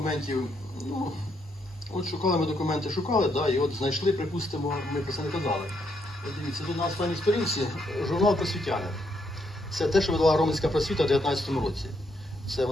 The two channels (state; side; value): normal; both; correlation 0.76